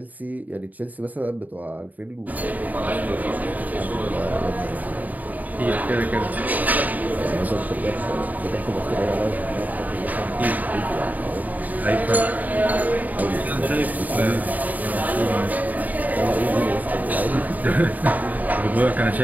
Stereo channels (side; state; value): left; late; 0.078 ms